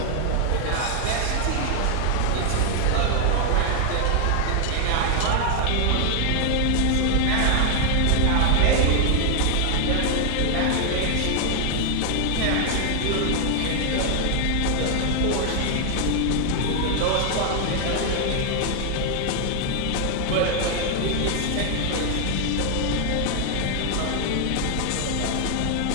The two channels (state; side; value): different; both; correlation 0.00